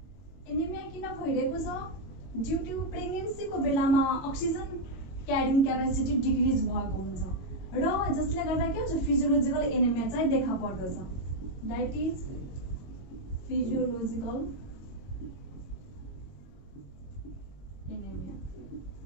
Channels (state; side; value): late; right; 22 ms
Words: किन भइरहेको छ ड्यू टु प्रेग्नेन्सीको बेलामा अक्सिजन क्यारिङ क्यापेसिटी डिक्रिज भएको हुन्छ र जसले गर्दा के हुन्छ फिजियोलोजिकल एनेमिया चाहिँ देखा पर्दछ दैट इज फिजियोलोजिकल एनेमिया